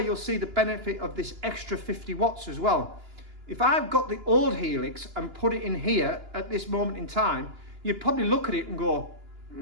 see the benefit of this extra 50 watts as well. If I've got the old Helix and put it in here at this moment in time, you'd probably look at it and go,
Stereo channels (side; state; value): left; late; 2.9 ms